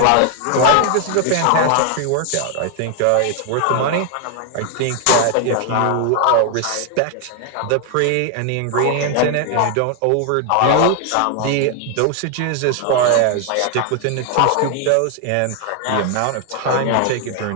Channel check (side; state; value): both; different; correlation 0.00